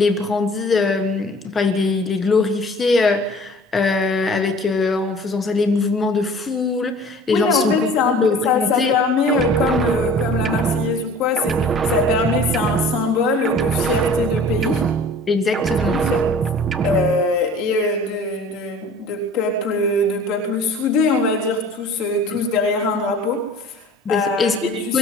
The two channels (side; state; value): both; normal; correlation 0.46